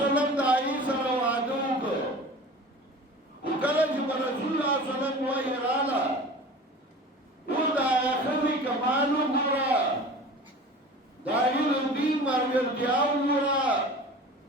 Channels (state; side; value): normal; both; correlation 0.39